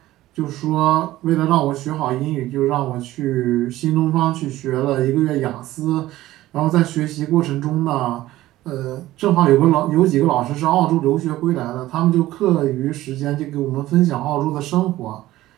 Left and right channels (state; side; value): quieter; left; 15.8 dB